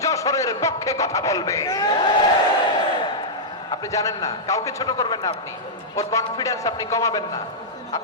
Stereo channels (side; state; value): both; normal; correlation -0.09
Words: যশোরের পক্ষে কথা বলবে। আপনি জানেন না, কাউকে ছোট করবেন না। আপনি ওর কনফিডেন্স আপনি কমাবেন না,